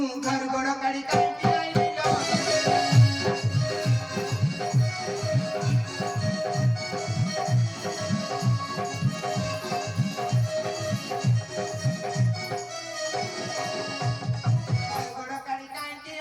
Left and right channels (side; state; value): both; identical; correlation 1.00